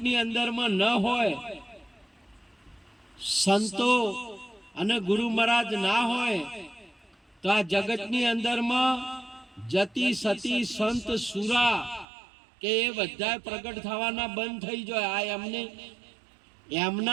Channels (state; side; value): drops out; left; at 12.1 s